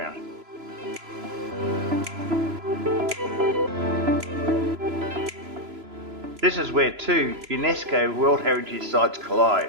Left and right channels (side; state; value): left; late; 3.0 ms